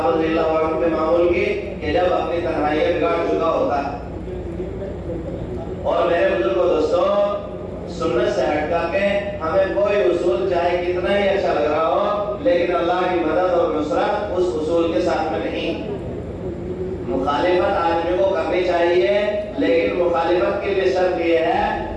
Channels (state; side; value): identical; both; correlation 1.00